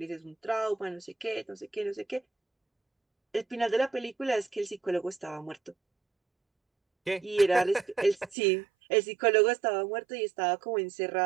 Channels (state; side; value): drops out; left; at 8.3 s